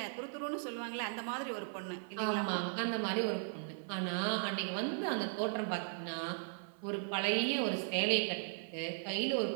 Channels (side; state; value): left; silent; 53 dB below the other